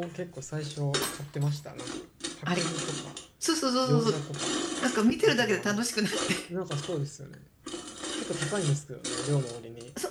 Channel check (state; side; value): identical; both; correlation 1.00